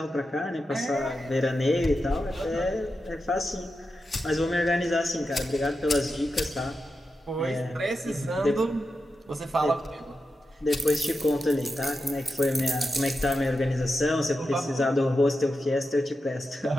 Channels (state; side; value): normal; both; correlation 0.89